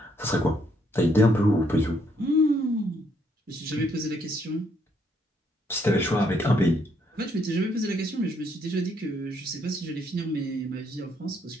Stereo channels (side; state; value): both; normal; correlation 0.71